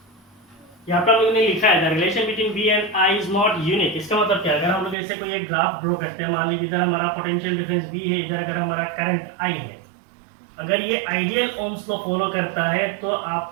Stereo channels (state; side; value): drops out; left; at 5.0 s